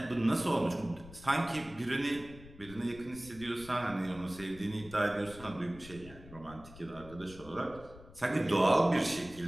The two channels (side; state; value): left; noise; rumble, 18 dB below the sound